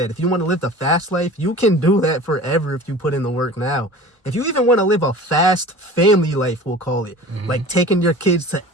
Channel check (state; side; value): normal; both; correlation 0.40